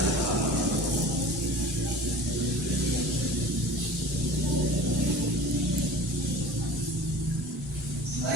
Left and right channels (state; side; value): normal; both; correlation 0.41